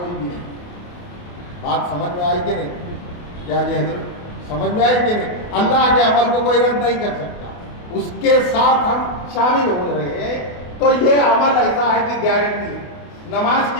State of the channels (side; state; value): right; late; 28 ms